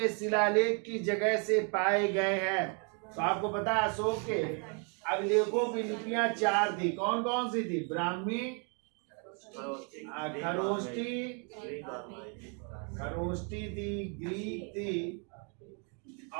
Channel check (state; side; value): quieter; left; 38.0 dB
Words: शिलालेख की जगह से पाए गए हैं। तो आपको पता है, अशोक के अभिलेखों की लिपियां 4 थी। कौन कौन सी थी? ब्राह्मी, खरोष्टी थी, ग्रीक थी,